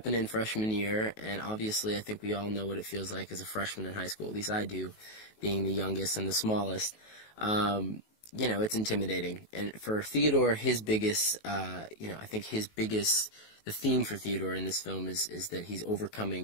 in freshman year, and obviously I think we all know what it feels like as a freshman in high school. At least I do, being the youngest and the smallest. You know, it's intimidating, and for Theodore, his biggest, you know, I think his biggest, the theme for Theodore in this film is that he's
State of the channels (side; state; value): right; late; 19 ms